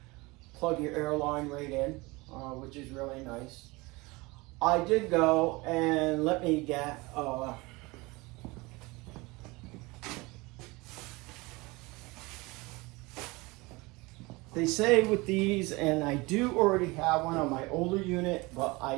plug your air line right in, which is really nice. I did go and let me get they say with these, and I do already have one on my older unit, but I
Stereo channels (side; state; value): left; quieter; 23.8 dB